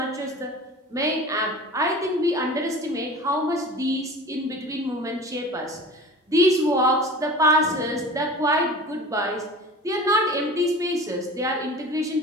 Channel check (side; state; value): both; normal; correlation 0.38